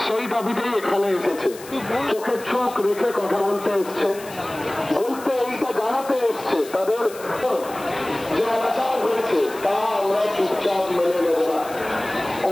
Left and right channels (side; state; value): left; noise; hiss, 17 dB below the sound